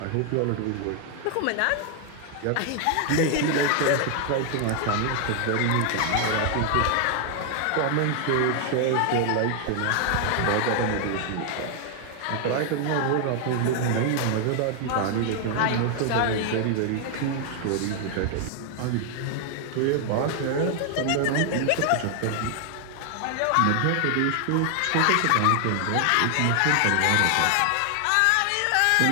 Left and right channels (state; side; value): different; both; correlation 0.00